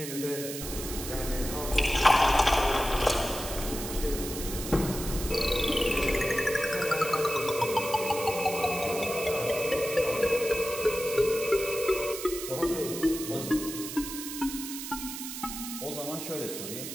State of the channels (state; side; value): noise; right; hiss, 8 dB below the sound